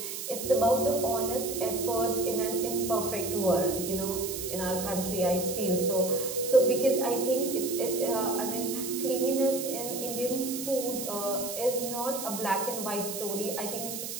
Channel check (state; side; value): noise; right; hiss, 6 dB below the sound